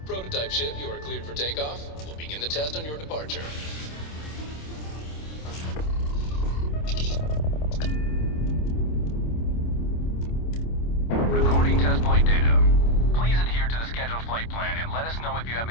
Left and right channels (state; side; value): late; right; 27 ms